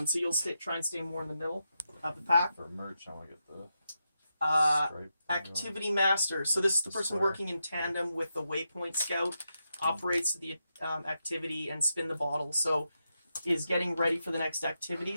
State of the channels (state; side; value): inverted; both; correlation -0.86